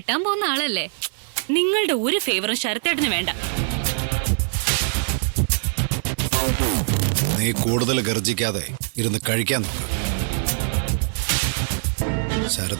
പോകുന്ന ആളല്ലേ. നിങ്ങളുടെ ഒരു ഫേവറും ശരത്തേട്ടന് വേണ്ട. നീ കൂടുതൽ ഗർജിക്കാതെ ഇരുന്ന് കഴിക്കാൻ നോക്ക്.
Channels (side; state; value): left; silent; digital silence